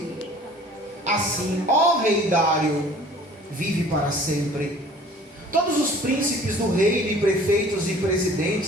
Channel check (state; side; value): normal; both; correlation 0.49